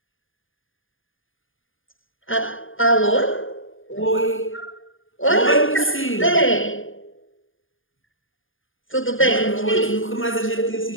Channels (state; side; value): late; right; 0.58 ms